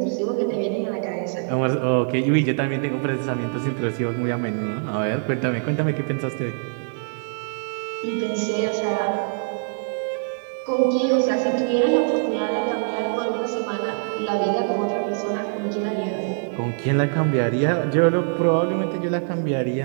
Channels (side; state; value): left; silent; digital silence